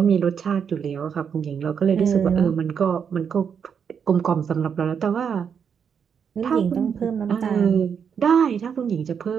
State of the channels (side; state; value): left; quieter; 7.1 dB